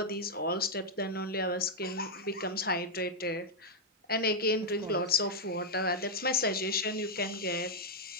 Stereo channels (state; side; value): normal; both; correlation -0.03